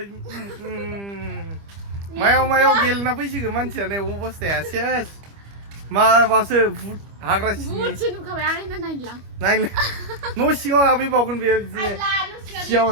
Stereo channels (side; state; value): left; late; 25 ms